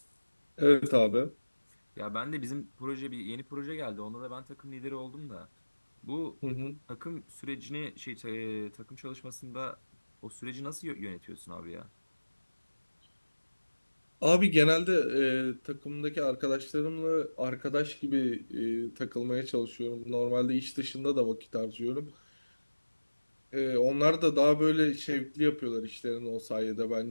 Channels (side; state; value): both; inverted; correlation -1.00